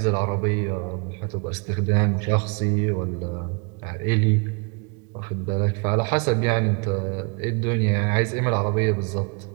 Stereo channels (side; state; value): left; quieter; 34.8 dB